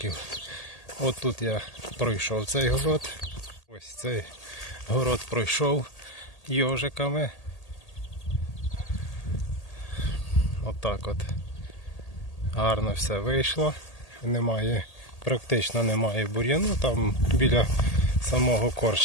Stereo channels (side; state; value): right; late; 1.8 ms